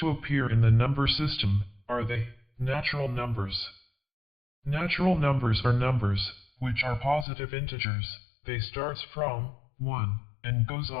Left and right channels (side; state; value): right; drops out; at 7.2 s